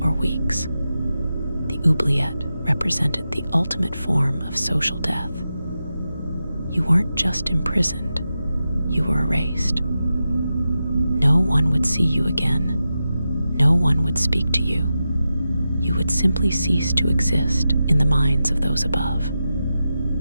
or weeks. The oubliette represented the ultimate form of social death. You weren't just imprisoned, you were erased. No one would see you again. No one would speak to you. You would simply cease to exist in the minds of those above.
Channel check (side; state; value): both; inverted; correlation -0.90